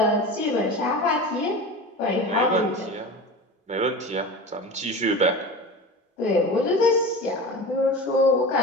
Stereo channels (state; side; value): normal; both; correlation 0.31